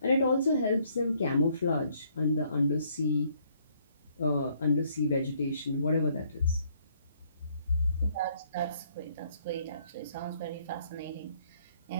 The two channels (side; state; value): both; inverted; correlation -0.67